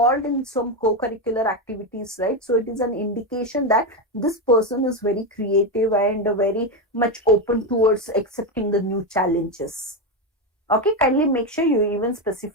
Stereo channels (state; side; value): normal; both; correlation 0.11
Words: in some co-curricular activities, right, so it is an indication that this person is very creative and very much open towards accepting the new challenges. Okay, kindly make sure you even